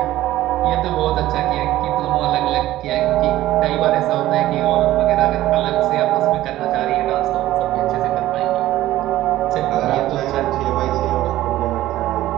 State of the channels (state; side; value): quieter; left; 15.0 dB